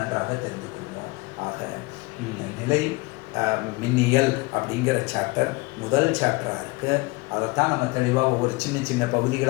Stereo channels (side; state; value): right; quieter; 24.2 dB